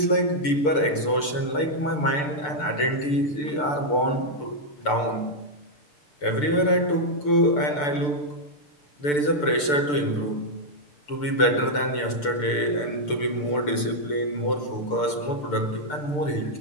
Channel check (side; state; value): right; late; 6.8 ms